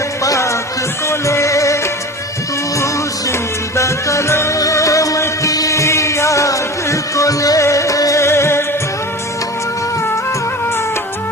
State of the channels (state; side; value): normal; both; correlation 0.34